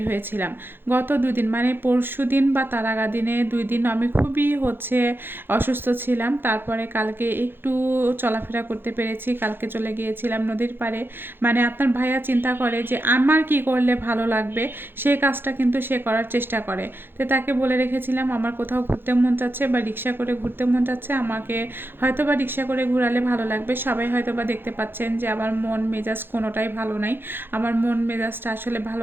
হয়েছিলাম। গত দুদিন মানে পরশু দিন বা তার আগা দিনে 2 দিন আমি খুবই অসুস্থ ছিলাম। তারপরে কালকে একটু চলাফেরা করতে পেরেছি। কালকে চলে গিয়েছিলাম নদীর পাড়ে। মানে আপনার ভাইয়া চিন্তা করে যে আমার কি করলে ভালো লাগবে, সেই কাজটা কিন্তু সে করার চেষ্টা করে। তো তাকে বলে রেখেছিলাম আমার কোথাও ঘুরতে মন চাচ্ছে বা রিক্সা করে ঘুরতে মন চাচ্ছে, আমাকে হয়তো বা রিক্সা করে ঘুরালে ভালো লাগবে। সবাই হয়তো বা দেখতে পাচ্ছেন যে আমার মন মেজাজ কোনোটাই ভালো নাই। আমার মন মেজাজটা আসলে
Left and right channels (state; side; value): late; left; 0.10 ms